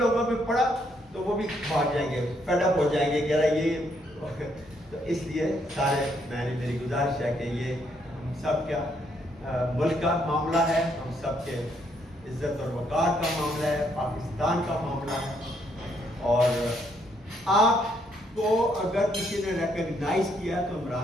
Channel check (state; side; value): normal; both; correlation 0.72